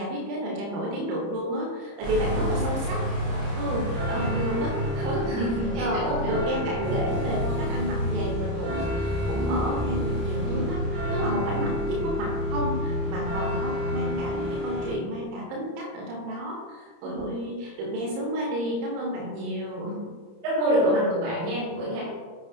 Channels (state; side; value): late; left; 30 ms